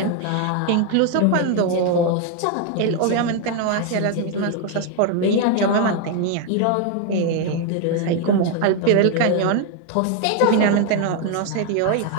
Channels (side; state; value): both; different; correlation 0.01